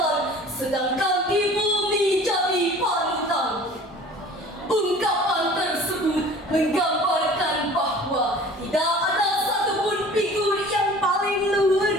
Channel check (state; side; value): normal; both; correlation 0.46